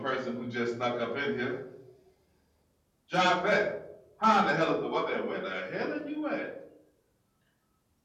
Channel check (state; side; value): identical; both; correlation 1.00